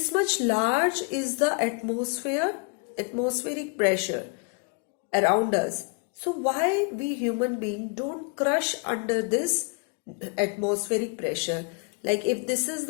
much large is the atmospheric pressure around us. So why we human beings don't crush under this atmospheric pressure? Like if this is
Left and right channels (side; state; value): right; quieter; 34.0 dB